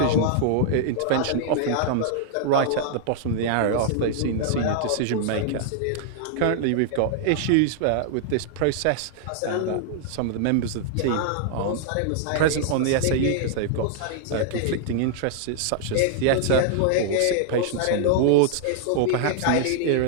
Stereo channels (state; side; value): different; both; correlation -0.01